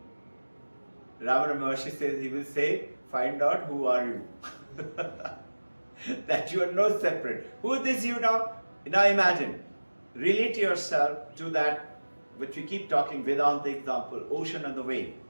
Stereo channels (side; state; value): both; inverted; correlation -1.00